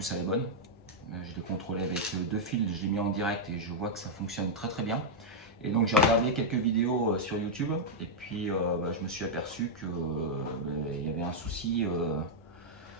elle est bonne. Je l'ai contrôlé avec 2 fils, je l'ai mis en direct et je vois que ça fonctionne très très bien. Et donc j'ai regardé quelques vidéos sur YouTube et puis je me suis aperçu que il y avait un souci,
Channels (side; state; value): both; normal; correlation -0.03